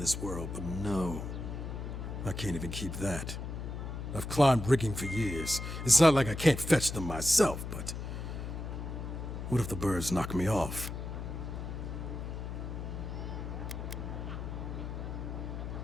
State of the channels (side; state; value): left; noise; hum, 6 dB below the sound